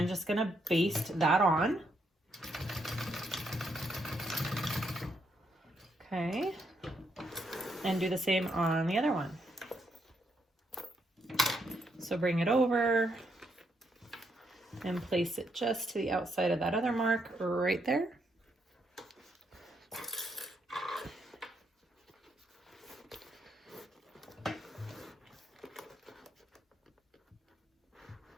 just gonna baste that on. Okay, and do the same on the other one. So bring it over and place it just to the outside of that other mark right there.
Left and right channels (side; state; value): both; normal; correlation 0.77